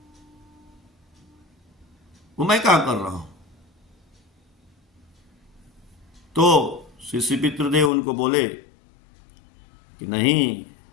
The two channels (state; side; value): drops out; right; at 7.9 s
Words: वो मैं क्या कर रहा हूं। तो श्री पितृदेव उनको बोले कि नहीं,